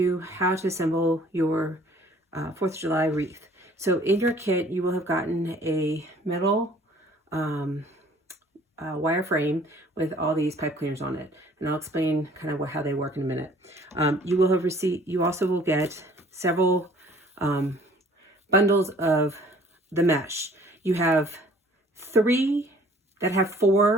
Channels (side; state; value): both; normal; correlation 0.55